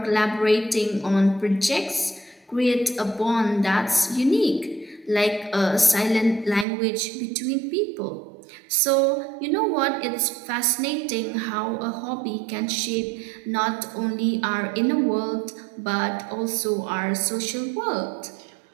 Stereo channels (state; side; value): drops out; left; at 6.7 s